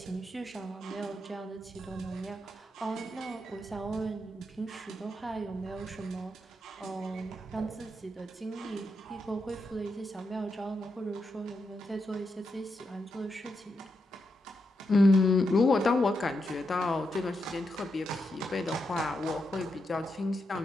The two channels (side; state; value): both; normal; correlation 0.84